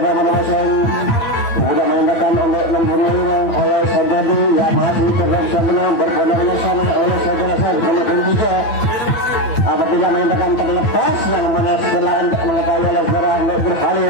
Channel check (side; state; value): right; late; 9.1 ms